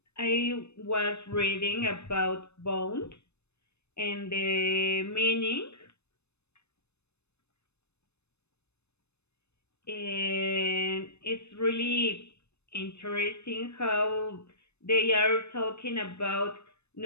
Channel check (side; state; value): right; late; 0.81 ms